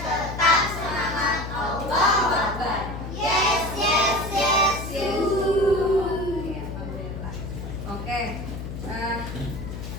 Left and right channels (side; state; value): left; noise; hum, 7 dB below the sound